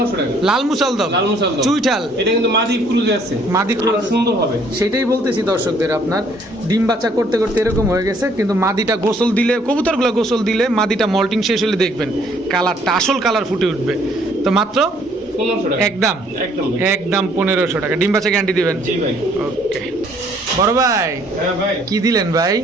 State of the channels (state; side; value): normal; both; correlation 0.63